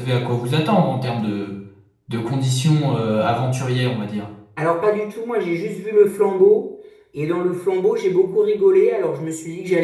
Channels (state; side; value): identical; both; correlation 1.00